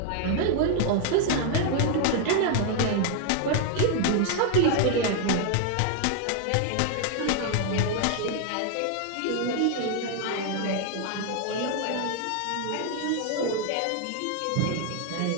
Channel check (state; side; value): different; both; correlation 0.00